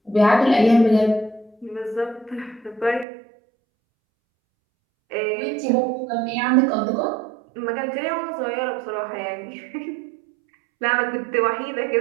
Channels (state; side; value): drops out; left; at 3.1 s